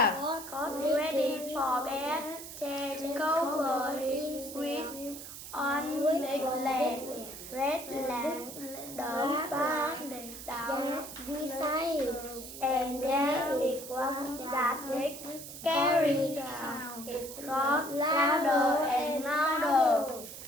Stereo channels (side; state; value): right; noise; hiss, 12 dB below the sound